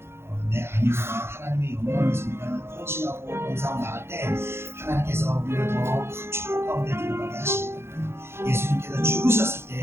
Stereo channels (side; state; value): left; late; 0.12 ms